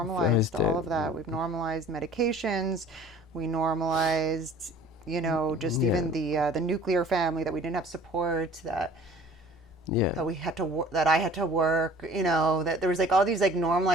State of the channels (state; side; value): normal; both; correlation 0.48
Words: normalized it. all of that. We've normalized medications. We normalized, just Yeah, even the nuclear family, that we didn't have support, yeah, that we had to that I had to work, that there was like all these like